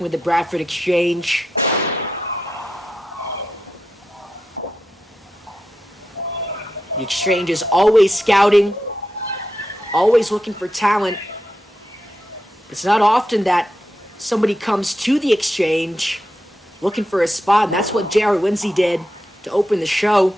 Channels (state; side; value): normal; both; correlation 0.87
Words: with the Bradford Exchange. The Exchange is always scouting, always looking for talent. It's not often that somebody comes to the Exchange looking for a spot, and that's what J.R. Lindsay did to open the show.